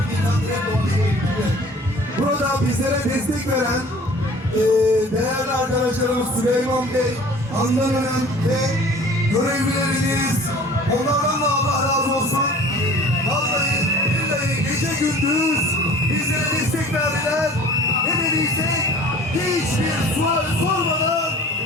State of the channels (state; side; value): normal; both; correlation 0.47